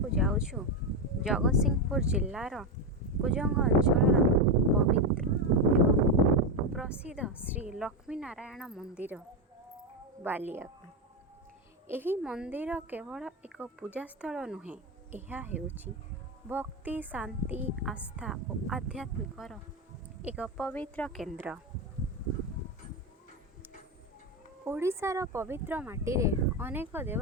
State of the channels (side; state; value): both; normal; correlation 0.10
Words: जाउछु जगतसिंहपुर जिल्लार कुजंग अंचल पवित्र एवं प्रसिद्ध श्री लक्ष्मी नारायण मंदिर बालिया। एही मंदिर केवल एक पूजास्थल नुहे, यह हेउची भक्ति शांति आस्था और आध्यात्मिकर एक पवित्र केन्द्र। ओडिशार पवित्र माटी रे अनेक